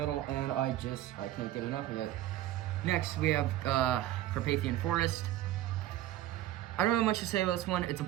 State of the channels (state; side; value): quieter; left; 14.0 dB